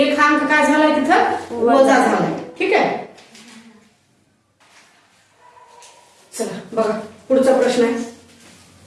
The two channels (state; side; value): identical; both; correlation 1.00